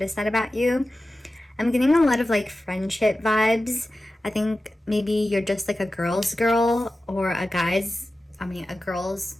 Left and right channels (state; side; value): normal; both; correlation 0.94